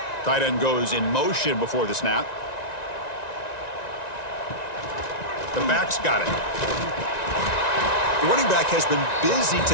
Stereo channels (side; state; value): right; late; 1.9 ms